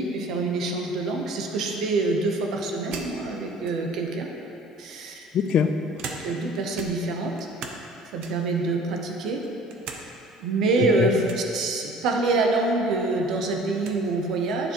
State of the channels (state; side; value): normal; both; correlation 0.48